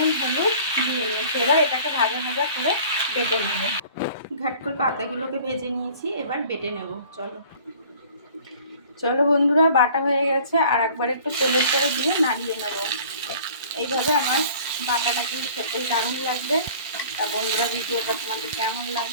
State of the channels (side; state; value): both; inverted; correlation -0.49